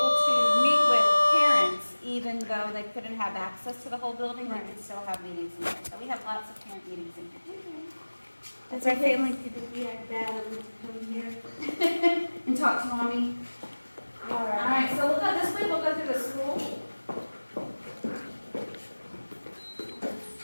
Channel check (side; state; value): both; inverted; correlation -1.00